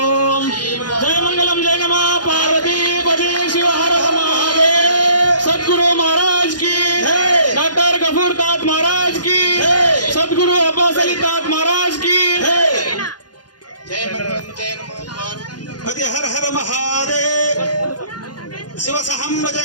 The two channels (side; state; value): right; late; 0.70 ms